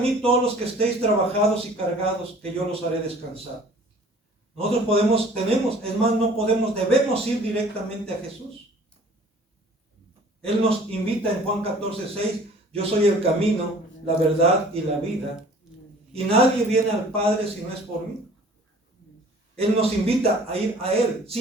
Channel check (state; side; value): normal; both; correlation 0.50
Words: todos los que estéis trabajados y cargados, que yo los haré descansar. Nosotros debemos ir directamente a Jesús. Él nos invita en Juan 14:6, yo soy el camino, la verdad y la vida, y nadie viene al Padre si no es por mí. Él nos invita a ir a Él,